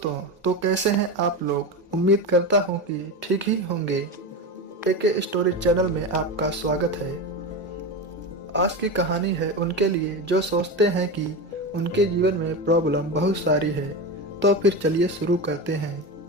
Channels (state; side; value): normal; both; correlation 0.21